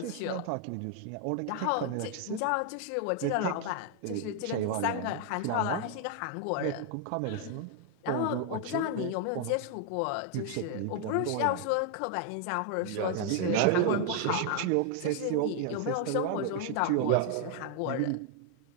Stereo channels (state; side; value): different; both; correlation 0.00